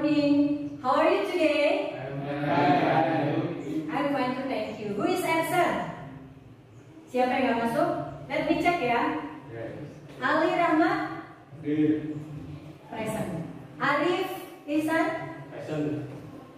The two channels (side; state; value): both; identical; correlation 1.00